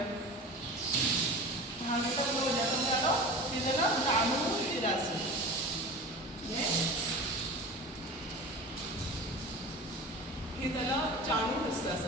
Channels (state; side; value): normal; both; correlation 0.34